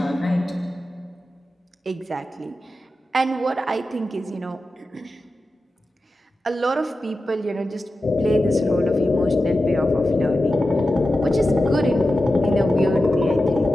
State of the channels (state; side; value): normal; both; correlation 0.92